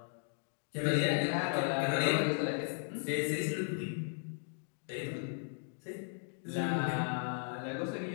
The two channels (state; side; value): silent; right; digital silence